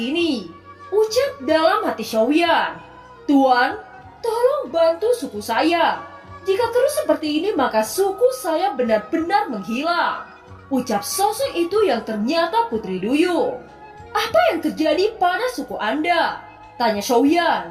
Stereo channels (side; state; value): both; identical; correlation 1.00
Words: Ucap dalam hati Xiaoyan. Tuan, tolong bantu suku saya. Jika terus seperti ini maka suku saya benar-benar menghilang. Ucap sosok itu yang ternyata Putri Duyung. Apa yang terjadi pada suku Anda? Tanya Xiaoyan.